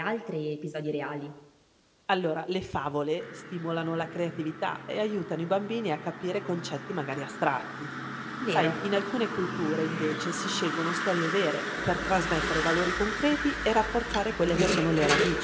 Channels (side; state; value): both; identical; correlation 1.00